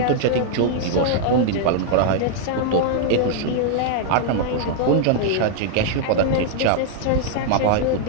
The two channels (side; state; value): both; different; correlation -0.01